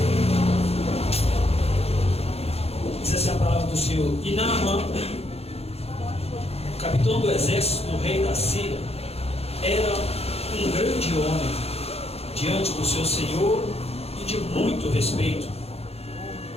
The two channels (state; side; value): late; right; 0.29 ms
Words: Diz assim a palavra do Senhor: E Naamã, capitão do exército do rei da Síria, era um grande homem diante do seu senhor e de muito respeito,